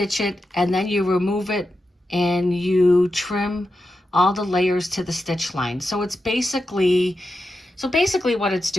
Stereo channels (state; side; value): normal; both; correlation 0.89